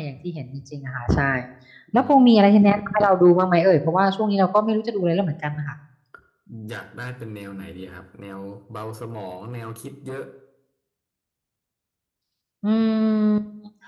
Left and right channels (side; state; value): both; identical; correlation 1.00